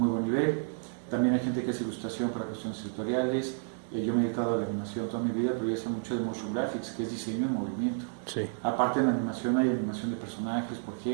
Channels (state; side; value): silent; left; digital silence